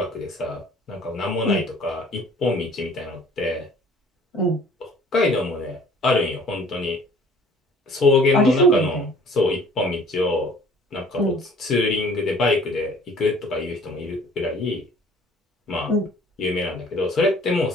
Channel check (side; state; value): both; normal; correlation 0.53